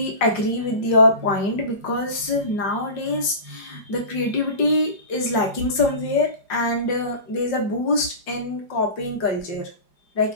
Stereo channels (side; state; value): right; late; 4.9 ms